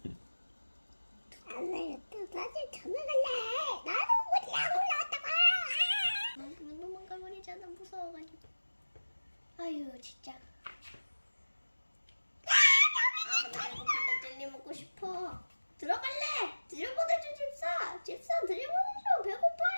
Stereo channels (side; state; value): both; inverted; correlation -1.00